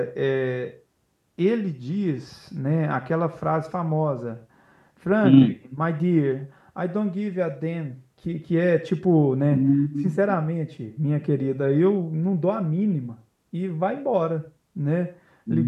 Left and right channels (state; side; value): identical; both; correlation 1.00